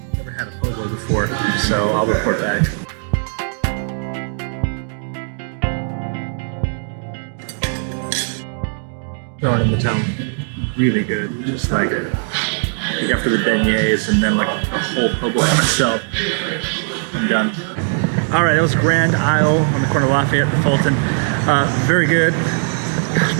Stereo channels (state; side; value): silent; left; 64 dB below the other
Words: Before, so I'll report back. Going in the town, really good. Just like after the beignets and then like a whole po' boy myself. I'm done. All right, that was Grand Isle on the corner of Lafayette and Fulton. Very good.